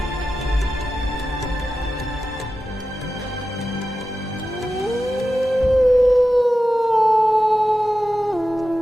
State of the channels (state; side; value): normal; both; correlation 0.93